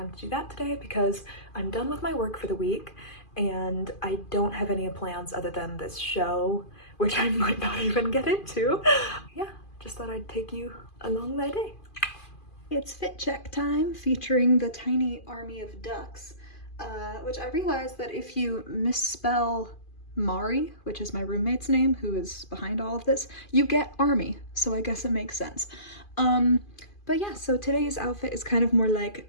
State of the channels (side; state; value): right; late; 2.4 ms